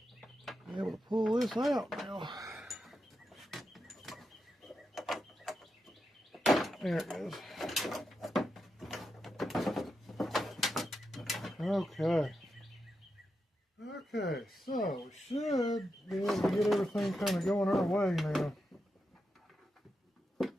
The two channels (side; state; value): both; normal; correlation 0.87